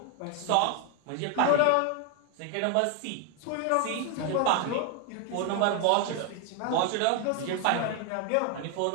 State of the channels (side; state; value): both; different; correlation 0.01